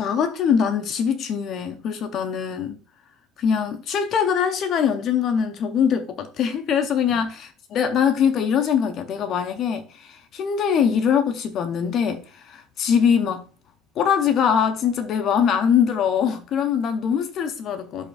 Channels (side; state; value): right; quieter; 7.2 dB